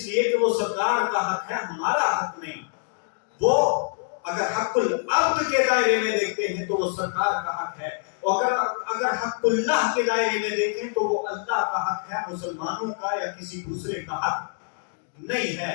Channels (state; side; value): silent; right; digital silence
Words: لیے کہ وہ سرکار کا حق ہے، ہمارا حق نہیں۔ وہ اگر حق العبد کے دائرے میں دیکھتے ہیں تو وہ سرکار کا حق ہے، اور اگر حق اللہ کے دائرے میں دیکھیں تو وہ اللہ کا حق ہے، مسلمانوں کا یا کسی دوسرے کا حق نہیں ہے۔